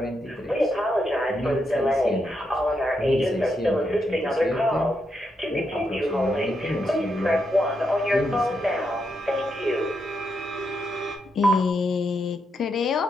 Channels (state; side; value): normal; both; correlation 0.82